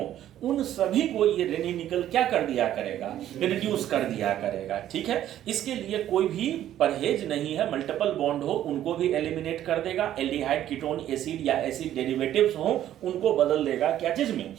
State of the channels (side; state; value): left; quieter; 11.9 dB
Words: उन सभी को ये रेनी-निकल क्या कर दिया करेगा, रिड्यूस कर दिया करेगा, ठीक है। इसके लिए कोई भी परहेज नहीं है, मल्टीपल बॉन्ड हो उनको भी एलिमिनेट कर देगा, एल्डिहाइड कीटोन एसिड या एसिड डेरिवेटिव्स हो उनको बदल देगा क्या चीज में,